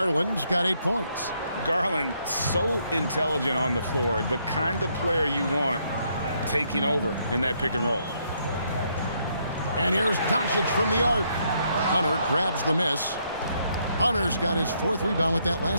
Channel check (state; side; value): inverted; both; correlation -0.73